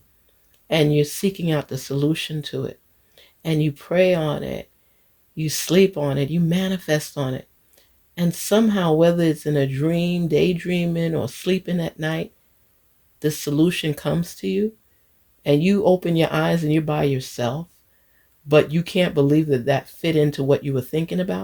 and you're seeking out the solution to it and you pray on it, you sleep on it, you manifest on it, and somehow, whether it's in a dream, daydreaming, or sleeping at night, the solution comes to you and you open your eyes and you're by yourself, but you can't believe that that fit into what you were thinking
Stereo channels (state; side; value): identical; both; correlation 1.00